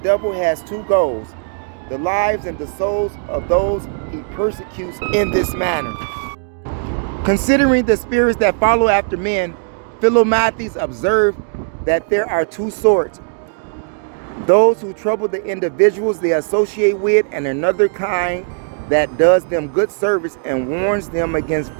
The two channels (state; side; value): silent; left; digital silence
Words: has 2 goals: the lives and the souls of those he persecutes in this manner. Considering the spirits that follow after men, Philomathes observed that there are two sorts: those who trouble the individuals they associate with, and another kind that does them good service and warns them against